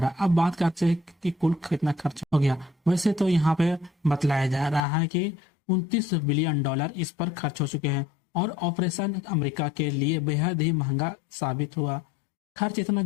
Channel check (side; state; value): right; drops out; at 4.8 s